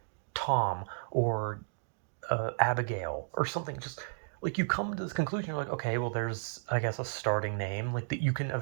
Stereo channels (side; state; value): left; silent; digital silence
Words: Tom or Abigail or something, just like you come to this conclusion, you're like, okay, well, there's I guess a starting name like that you can